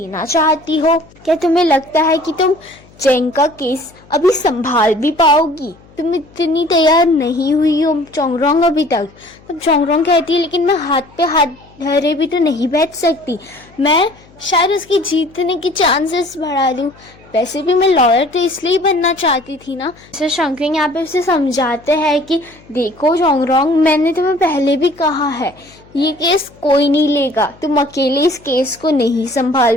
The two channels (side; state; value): left; noise; hum, 26 dB below the sound